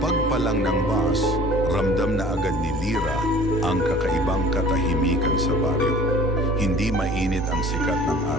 pa lang ng bus, ramdam na agad ni Lira ang kakaibang katahimikan sa baryo. Hindi mainit ang sikat ng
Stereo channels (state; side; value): normal; both; correlation 0.48